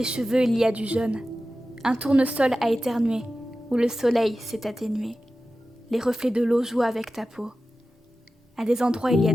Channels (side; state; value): both; normal; correlation 0.94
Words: cheveux, il y a du jaune. Un tournesol a éternué, où le soleil s'est atténué. Les reflets de l'eau jouent avec ta peau. À des endroits, il y a